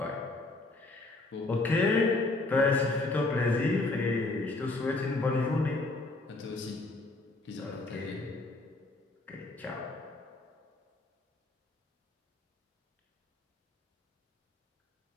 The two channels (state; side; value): quieter; right; 3.1 dB